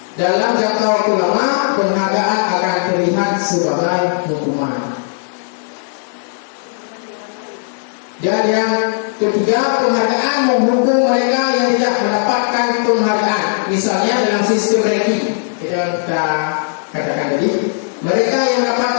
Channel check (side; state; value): right; silent; digital silence